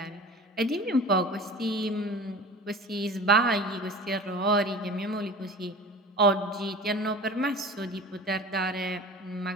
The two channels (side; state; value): both; normal; correlation 0.38